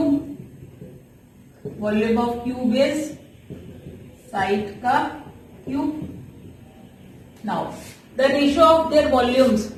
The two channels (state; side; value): identical; both; correlation 1.00